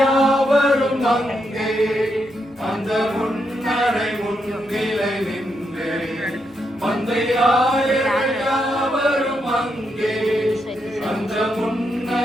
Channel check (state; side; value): noise; right; hum, 30 dB below the sound